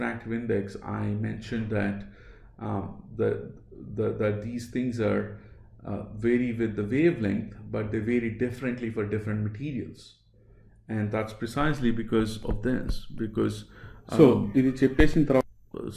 index, I mentioned that that these things are vary with the wavelength, but they vary differently for different materials, and that's precisely because of this. Because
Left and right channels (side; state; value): both; identical; correlation 1.00